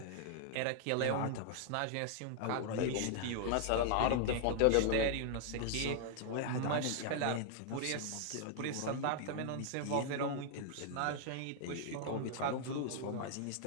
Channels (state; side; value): different; both; correlation 0.00